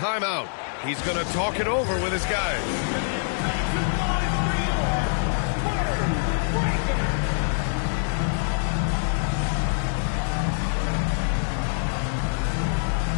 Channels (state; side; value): silent; right; digital silence